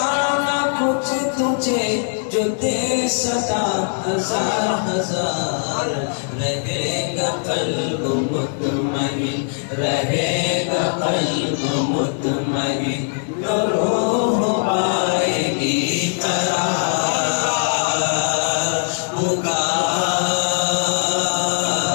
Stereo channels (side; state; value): right; silent; 65 dB below the other